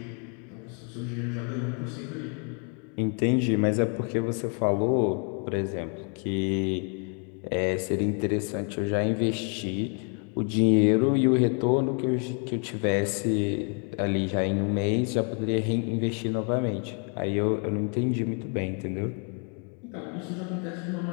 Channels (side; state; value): right; quieter; 39.7 dB